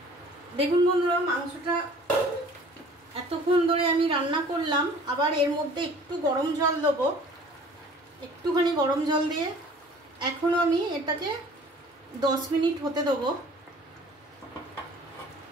দেখুন বন্ধুরা, মাংসটা এতক্ষণ ধরে আমি রান্না করলাম। আবার এর মধ্যে একটু গরম জল দেবো, একটুখানি গরম জল দিয়ে এখনো আমি এটাকে 10 মিনিট হতে দেবো।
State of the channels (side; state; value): both; normal; correlation 0.49